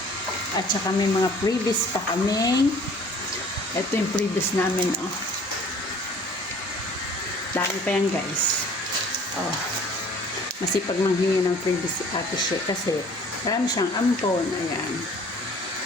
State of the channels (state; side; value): late; right; 1.2 ms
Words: At saka may mga previous pa kaming. Ito yung previous namin, oh. Dami pa yan, guys. Oh. Masipag manghingi ng previous si Ate She kasi marami siyang ampon. Ayan.